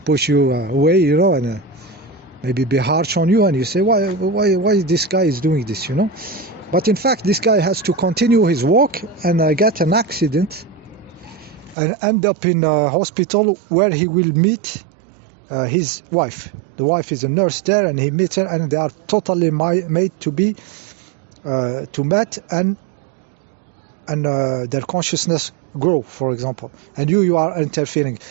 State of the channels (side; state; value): left; drops out; at 11.8 s